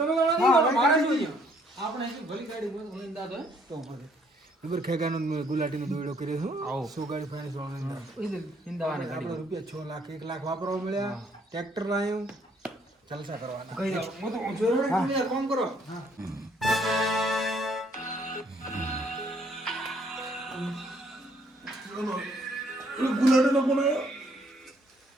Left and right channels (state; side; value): normal; both; correlation 0.65